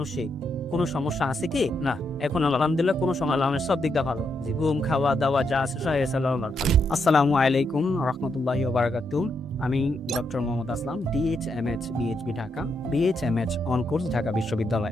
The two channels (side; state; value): both; normal; correlation 0.80